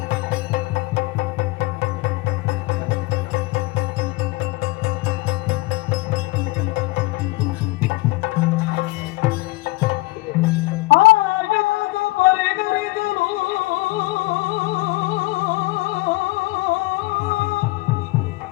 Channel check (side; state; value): right; quieter; 21.4 dB